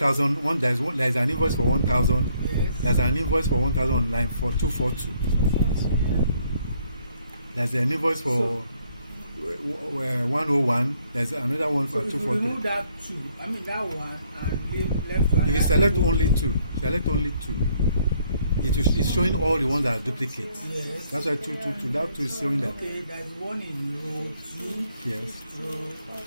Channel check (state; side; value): inverted; both; correlation -0.68